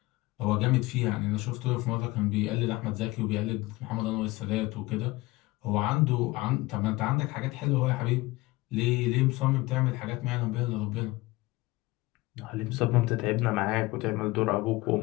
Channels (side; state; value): right; quieter; 20.7 dB